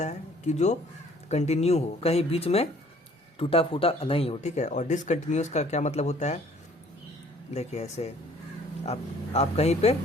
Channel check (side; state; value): both; normal; correlation 0.57